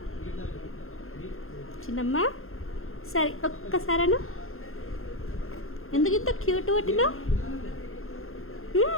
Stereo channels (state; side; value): late; right; 0.61 ms